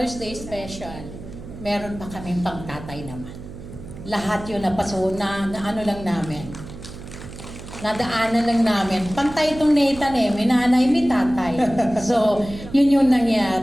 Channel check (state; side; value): noise; right; hum, 13 dB below the sound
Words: Day special, meron pa kaming pangtatay naman. Lahat yun na ano lang namin. Nadaanan lang namin. Pantay itong Nathan may nanay, may tatay. So, yun yung